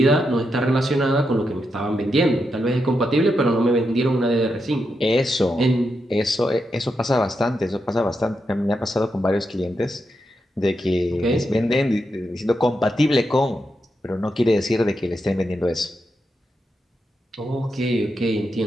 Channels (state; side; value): normal; both; correlation 0.85